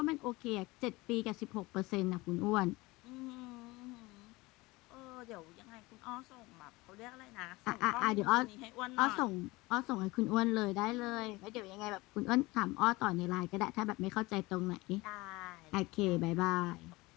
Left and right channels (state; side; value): quieter; right; 22.0 dB